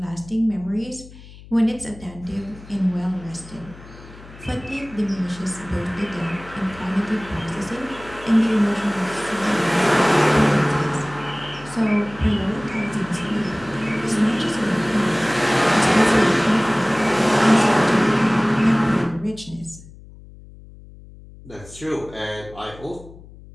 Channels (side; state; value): left; noise; hum, 19 dB below the sound